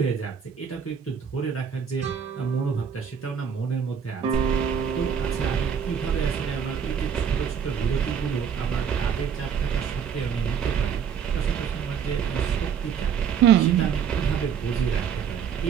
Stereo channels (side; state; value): left; quieter; 7.4 dB